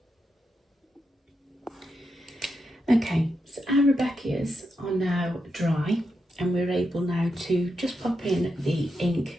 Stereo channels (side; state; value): both; normal; correlation 0.85